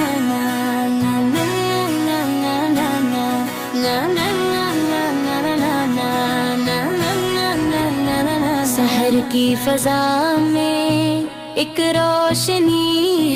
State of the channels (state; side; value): identical; both; correlation 1.00